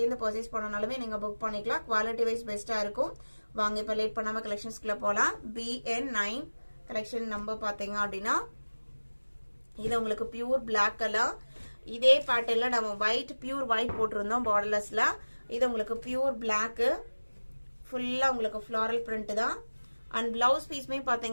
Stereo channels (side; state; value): both; inverted; correlation -1.00